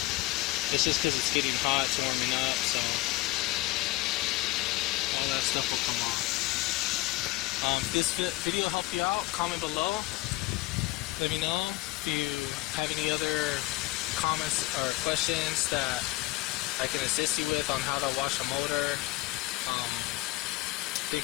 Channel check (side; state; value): right; quieter; 19.7 dB